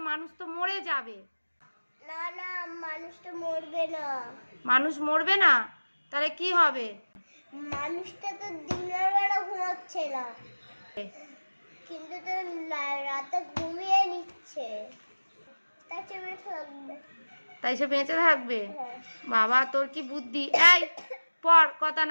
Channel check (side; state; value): both; inverted; correlation -1.00